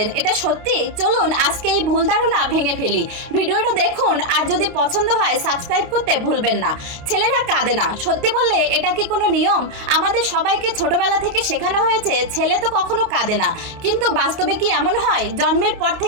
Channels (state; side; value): late; left; 29 ms